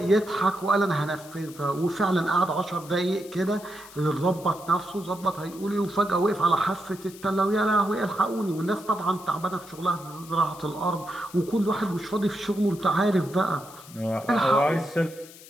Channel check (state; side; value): noise; left; hiss, 19 dB below the sound